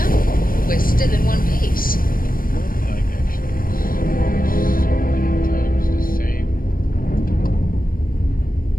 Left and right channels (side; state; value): right; late; 0.41 ms